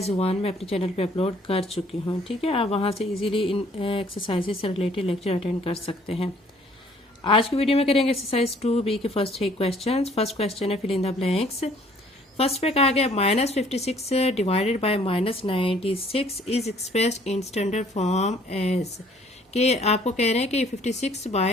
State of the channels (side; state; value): both; normal; correlation 0.59